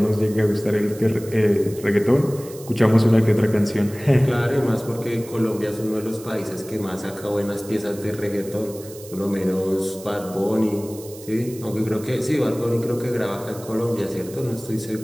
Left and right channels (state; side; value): noise; right; hiss, 18 dB below the sound